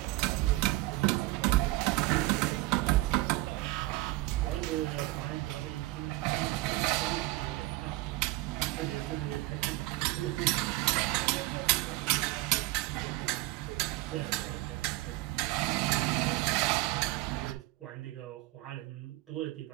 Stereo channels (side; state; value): left; quieter; 19.5 dB